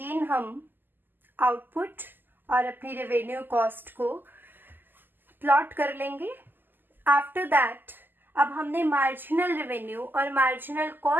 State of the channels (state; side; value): late; left; 0.092 ms